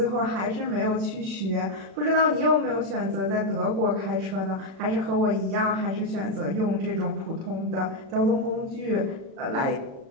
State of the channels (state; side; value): late; left; 36 ms